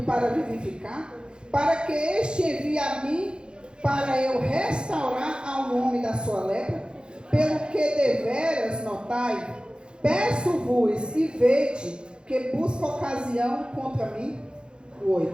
para vivificar, para que este envie a mim, para eu restaurar ao homem da sua lepra? Pelo que deveras notai, peço-vos e vede que busca ocasião contra mim.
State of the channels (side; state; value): left; late; 0.051 ms